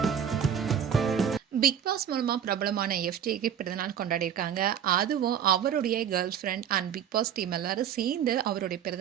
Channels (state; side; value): quieter; left; 8.8 dB